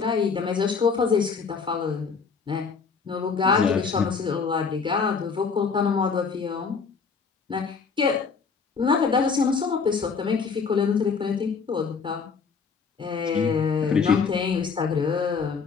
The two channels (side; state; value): right; quieter; 5.4 dB